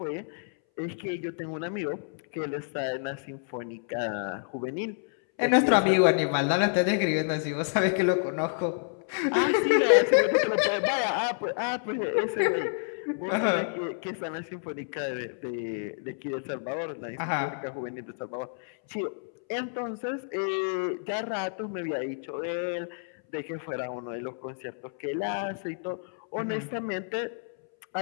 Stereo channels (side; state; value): right; silent; 59 dB below the other